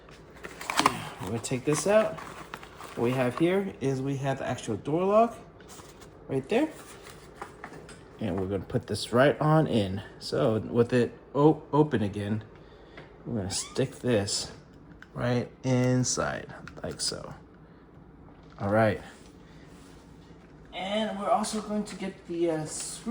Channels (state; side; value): identical; both; correlation 1.00